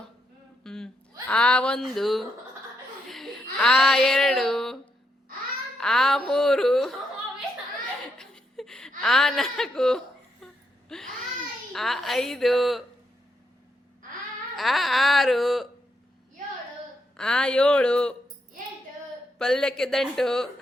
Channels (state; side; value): normal; both; correlation 0.80